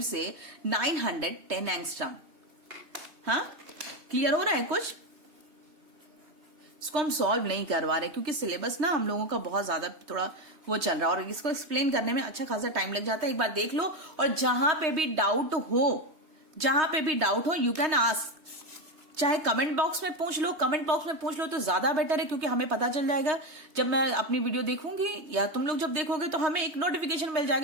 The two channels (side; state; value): left; late; 3.2 ms